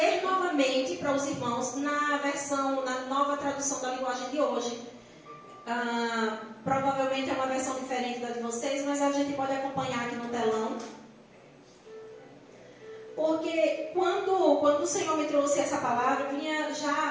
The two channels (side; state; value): both; identical; correlation 1.00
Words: novamente para os irmãos na nova tradução da linguagem de hoje. Provavelmente é uma versão diferente da de vocês, mas a gente pode acompanhar aqui no telão. Porque quando o Senhor me trouxe essa palavra, eu vinha